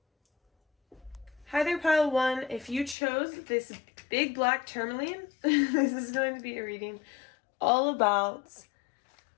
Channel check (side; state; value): right; drops out; at 3.0 s